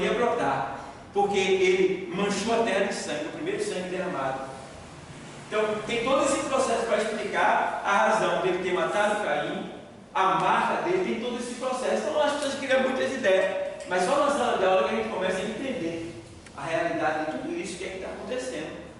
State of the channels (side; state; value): both; identical; correlation 1.00